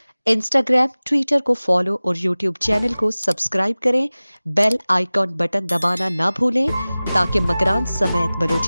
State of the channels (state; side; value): inverted; both; correlation -0.98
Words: Instagram, Twitter को फॉलो और यूट्यूब चैनल को सब्सक्राइब करें। बेल आइकॉन बटन दबाना ना भूलें ताकि मकरान समेत